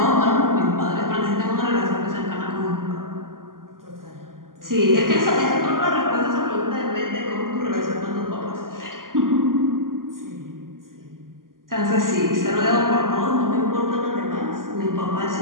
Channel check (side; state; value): left; late; 0.91 ms